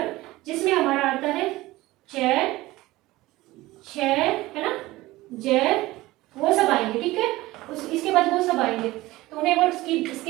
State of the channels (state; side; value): quieter; left; 18.6 dB